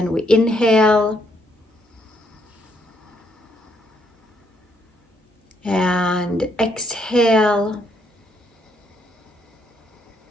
we inhale and exhale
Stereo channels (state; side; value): normal; both; correlation 0.73